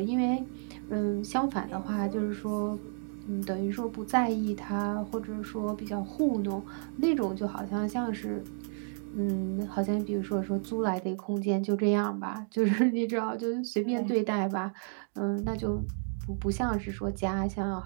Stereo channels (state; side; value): silent; left; 57 dB below the other